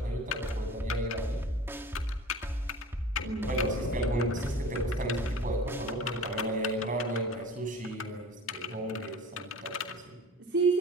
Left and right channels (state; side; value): normal; both; correlation 0.40